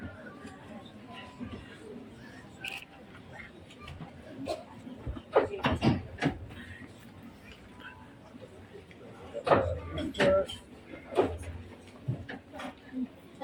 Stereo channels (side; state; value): both; identical; correlation 1.00